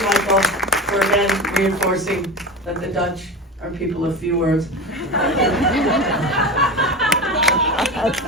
Michael, for again reinforcing that the Dutch are people of few words.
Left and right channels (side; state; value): both; normal; correlation 0.27